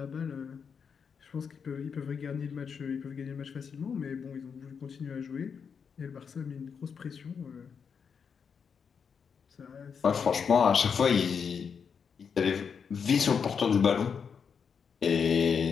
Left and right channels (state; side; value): quieter; right; 6.5 dB